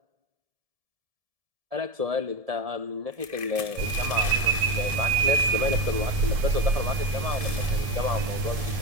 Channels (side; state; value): left; late; 1.7 ms